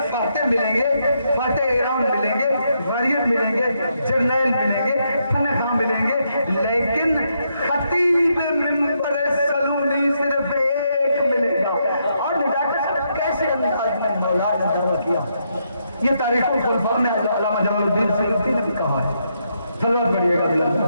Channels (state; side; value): inverted; both; correlation -0.78